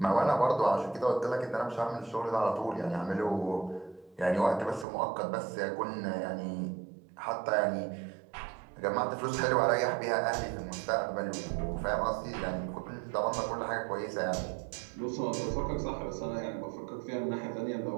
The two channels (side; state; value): left; drops out; at 4.9 s